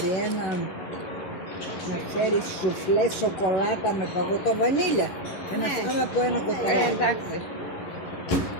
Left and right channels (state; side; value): late; right; 11 ms